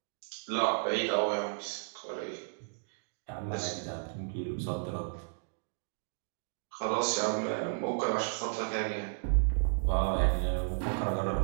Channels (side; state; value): left; silent; digital silence